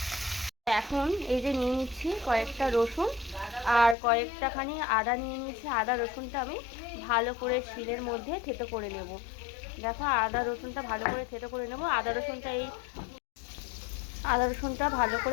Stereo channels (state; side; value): drops out; right; at 4.0 s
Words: এখন এই যে নিয়ে নিচ্ছি কয়েকটা রসুন আর কয়েকটাখানি আদা নিয়ে নিয়েছি। আদা রসুনটা আমি ভালো করে শিলের মধ্যে থেতো করে নেব। দেখো আদা রসুনটা ভালো করে থেতো করে নেব। আদা রসুনটা ভালো